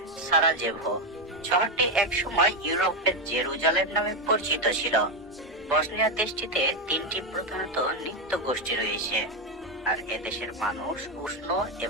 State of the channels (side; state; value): both; normal; correlation 0.09